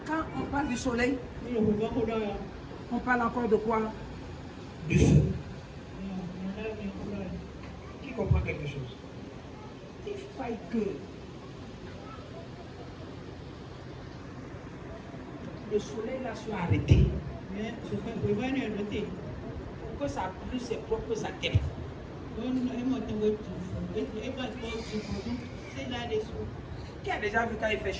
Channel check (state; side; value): identical; both; correlation 1.00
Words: Quand on parle du soleil, on parle encore de quoi? Du feu. Qui comprend quelque chose? Il faille que le soleil là soit arrêté. Pour que ça brûle ses propres adeptes. Qui a déjà vu quand il fait